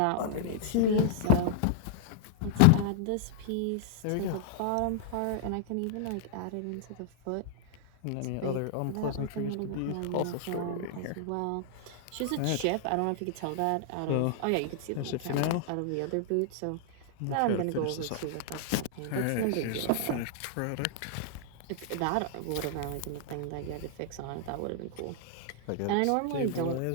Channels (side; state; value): both; different; correlation -0.01